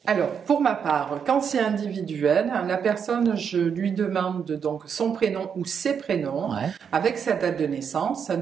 Alors, pour ma part, quand c'est individuel, la personne, je lui demande donc son prénom ou ses prénoms avec sa date de naissance.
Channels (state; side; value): quieter; left; 7.1 dB